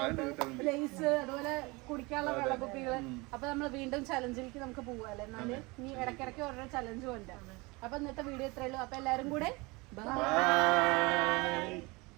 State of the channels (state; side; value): quieter; left; 25.1 dB